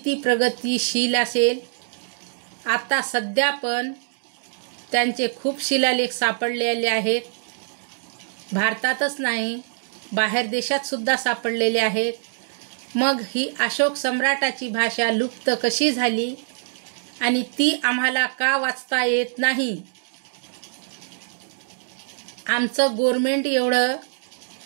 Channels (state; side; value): silent; left; digital silence